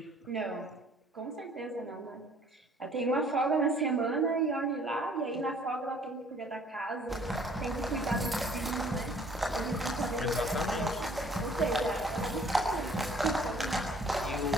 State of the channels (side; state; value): both; normal; correlation 0.56